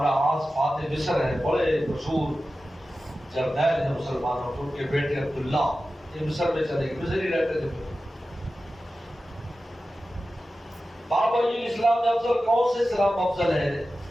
عاص فاتح مصر ہیں، بڑے مشہور جرنیل ہیں مسلمانوں کے، ان کے بیٹے عبداللہ یہ مصر میں چلے گئے، مصر ہی رہتے تھے۔ بابا اسلام میں افضل کون سے اسلام افضل ہے؟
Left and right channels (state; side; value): normal; both; correlation 0.94